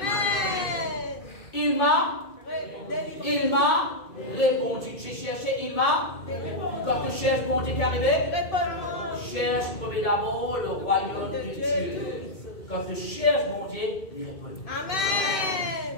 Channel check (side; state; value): right; late; 2.6 ms